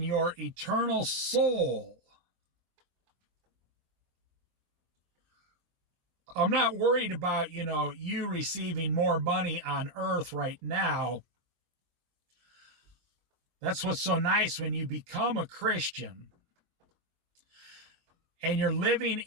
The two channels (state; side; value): late; left; 23 ms